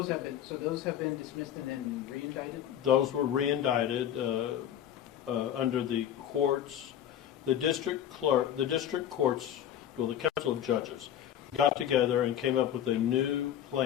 have been dismissed and then re-indicted? Those were re-indicted under the courts. The district courts, well, the Council of Judges, got together and came up with a new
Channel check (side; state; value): right; quieter; 10.4 dB